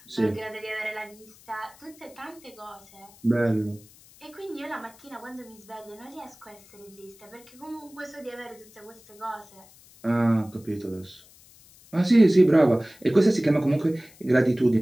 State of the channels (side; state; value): left; noise; hiss, 25 dB below the sound